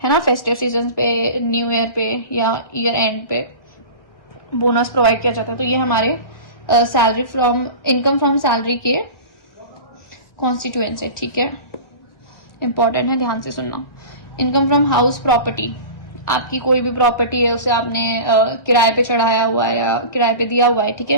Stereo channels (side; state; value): right; late; 1.4 ms